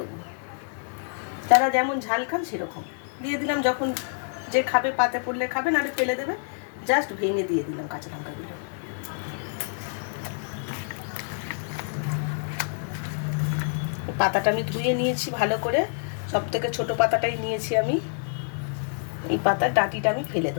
যারা যেমন ঝাল খান সেরকম দিয়ে দিলাম। যখন যে খাবে পাতে পড়লে খাবে, নাহলে ফেলে দেবে, জাস্ট ভেঙে দিয়ে দিলাম কাঁচা লঙ্কাগুলো। পাতাটা আমি ধুয়ে নিয়েছি ভালো করে, সব থেকে ছোটো পাতাটাই নিয়েছি আমি। এই পাতার ডাঁটিটা আমি ফেলে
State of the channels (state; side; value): silent; right; digital silence